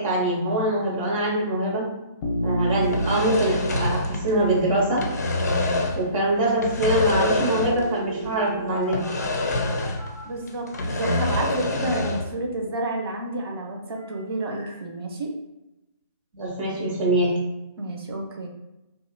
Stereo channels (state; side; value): inverted; both; correlation -0.46